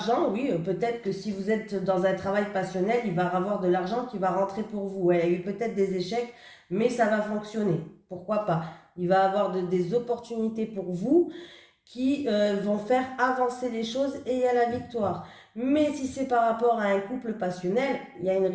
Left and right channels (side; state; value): both; identical; correlation 1.00